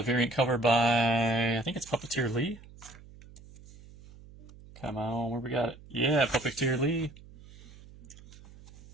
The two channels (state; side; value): noise; right; hum, 20 dB below the sound